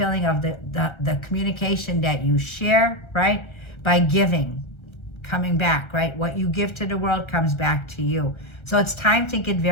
of the communication that you share, right? By giving, coming back, right? What you give to the world comes back to you. So it's time to get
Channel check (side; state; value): right; late; 1.3 ms